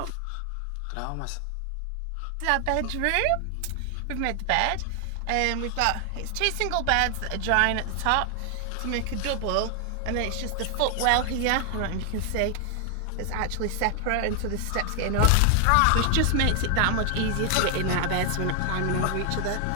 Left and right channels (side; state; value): both; different; correlation 0.00